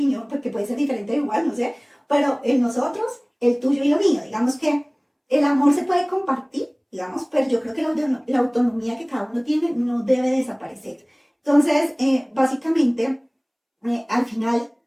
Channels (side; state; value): both; identical; correlation 1.00